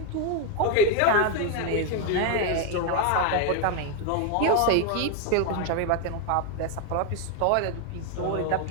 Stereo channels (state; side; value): different; both; correlation 0.01